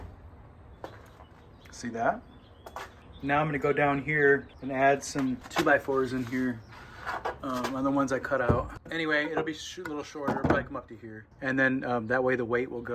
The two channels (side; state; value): both; identical; correlation 1.00